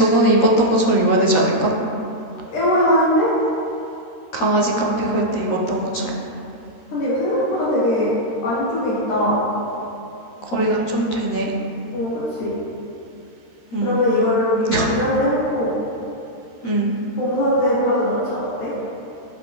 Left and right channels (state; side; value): late; right; 13 ms